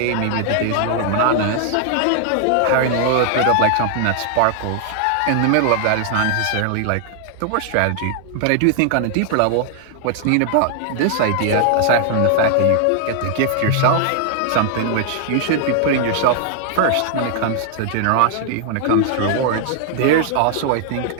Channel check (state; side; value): different; both; correlation 0.00